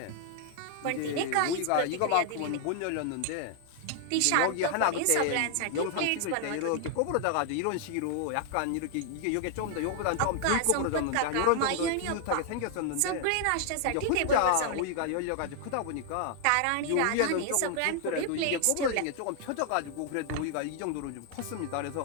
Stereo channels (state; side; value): different; both; correlation 0.00